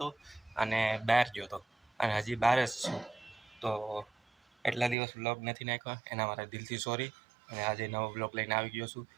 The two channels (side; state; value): left; drops out; at 5.0 s